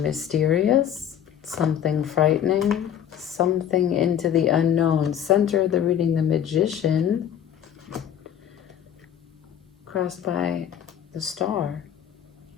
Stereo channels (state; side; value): quieter; right; 9.6 dB